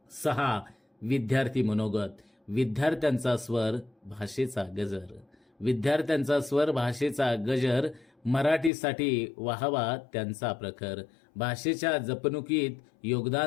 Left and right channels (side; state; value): right; drops out; at 8.7 s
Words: 6. विद्यार्थी मनोगत. विद्यार्थ्यांचा स्वर, भाषेचा गजर. विद्यार्थ्यांचा स्वर, भाषेचा गजर. मराठीसाठी वाहवा त्यांचा प्रखर. भाषेच्या जपणुकीत